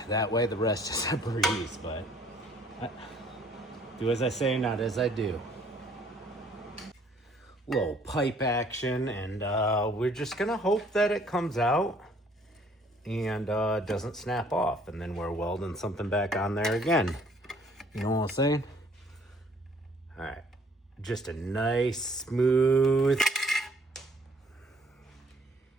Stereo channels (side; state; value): both; normal; correlation 0.60